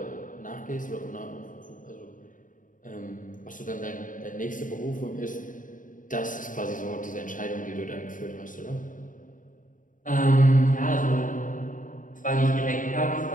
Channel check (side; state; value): right; late; 0.38 ms